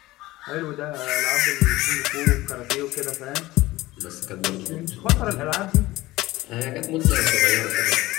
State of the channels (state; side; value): quieter; right; 18.3 dB